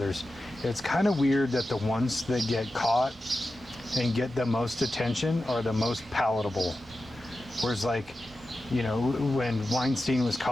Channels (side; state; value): both; normal; correlation 0.92